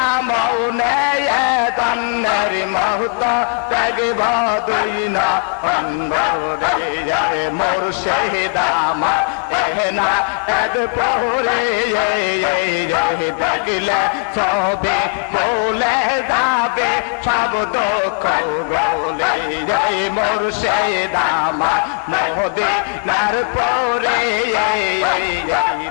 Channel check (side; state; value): right; quieter; 37.3 dB